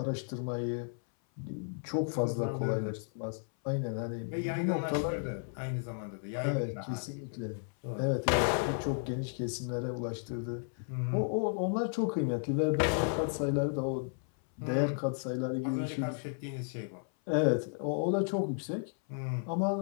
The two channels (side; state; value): right; silent; 55 dB below the other